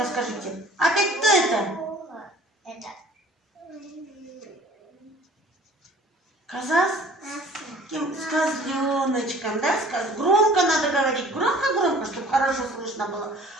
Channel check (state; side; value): normal; both; correlation 0.50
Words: скажите, опять кто это? Это. Коза с козленочком, да? Громко надо говорить, громко, чтобы хорошо слышно было.